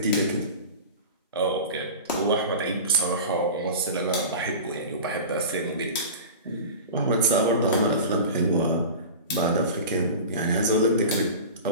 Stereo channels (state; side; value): inverted; both; correlation -0.33